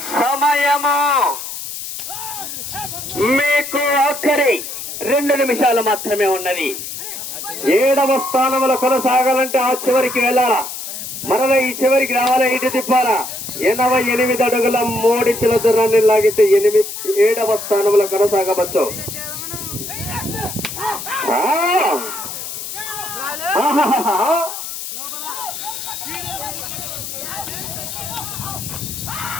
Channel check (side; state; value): left; noise; hiss, 8 dB below the sound